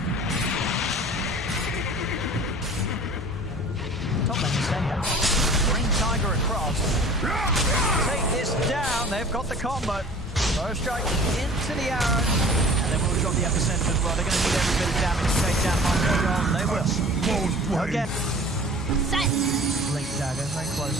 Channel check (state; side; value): normal; both; correlation 0.45